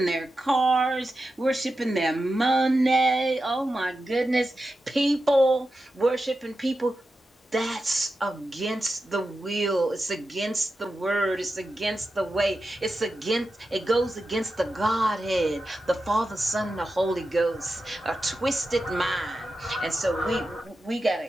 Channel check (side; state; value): both; normal; correlation 0.91